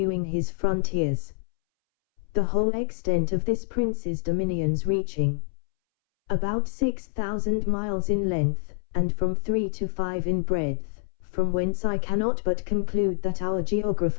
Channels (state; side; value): silent; right; 61 dB below the other